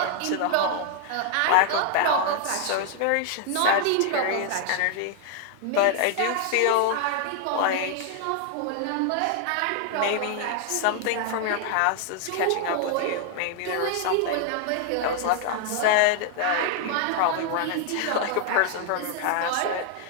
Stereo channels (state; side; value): different; both; correlation 0.00